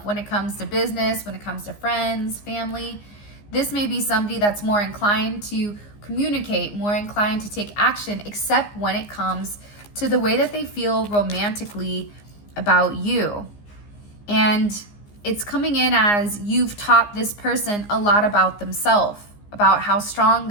when it comes to business, when it comes to friends, family. This may be somebody that's more inclined to communicate, more inclined to take action, except when it comes to the way that they feel romantically about you. And it's coming in as you've taught this person a lot about themselves, about how strong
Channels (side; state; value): right; late; 15 ms